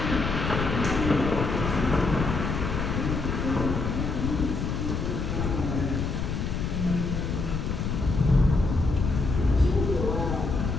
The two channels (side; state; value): left; noise; rumble, 2 dB below the sound